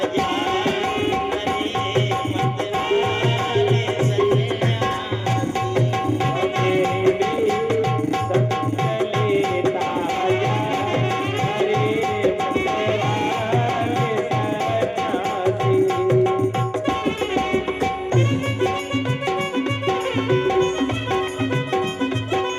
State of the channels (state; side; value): identical; both; correlation 1.00